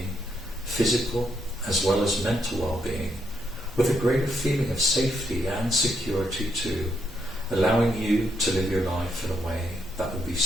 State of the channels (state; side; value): normal; both; correlation 0.77